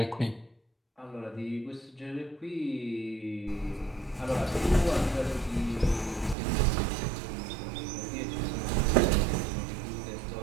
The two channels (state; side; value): drops out; left; at 6.4 s